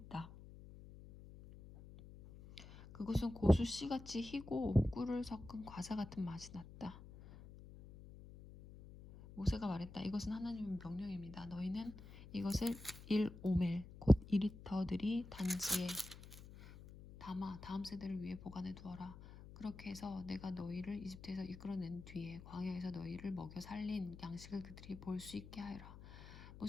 그것은 고수 씨같이 희고 꿀을 섞은 과자 같은 맛이 났다. 모세가 말했다. 이것은 하나님의 명령입니다. 너희는 이것을 1오멜 곧 2리터들이 단지에 담아 다음 세대를 위해 보관해 두어라. 그렇게 해서 내가 너희를 이집트에서 이끌어낸 뒤에 광야에서 너희를 먹여 살린 양식을 그들이 볼 수 있게 하여라.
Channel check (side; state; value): left; noise; hum, 16 dB below the sound